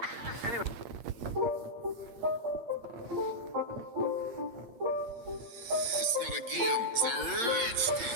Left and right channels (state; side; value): late; left; 8.6 ms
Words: Anyway. It's not a game, it's a rich.